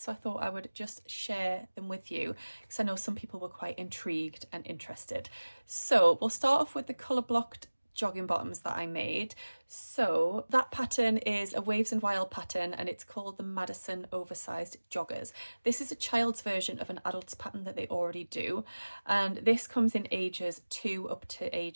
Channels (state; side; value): inverted; both; correlation -1.00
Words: so I thought I would just share them with you because I know some people were quite intrigued and interested. So we'll start off with the colour blocked jogging bottoms that I made. So that pattern is a Waves and Wild pattern, and it's called the Madison Oversized Joggers. This is a child's version of an adult's pattern that they already do, and this comes in ages 2 up to